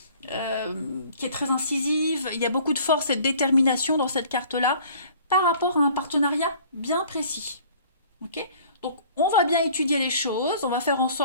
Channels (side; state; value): both; inverted; correlation -0.52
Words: est très incisive. Il y a beaucoup de force et de détermination dans cette carte-là par rapport à un partenariat bien précis. Ok ? Donc, on va bien étudier les choses, on va faire en